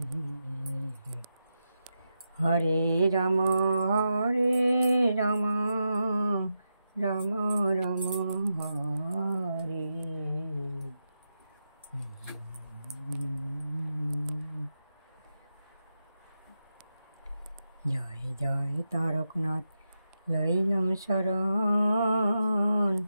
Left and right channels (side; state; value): both; inverted; correlation -0.88